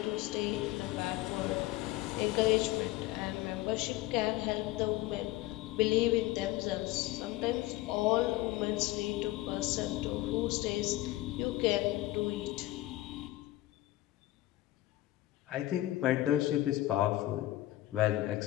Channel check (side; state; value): right; quieter; 16.7 dB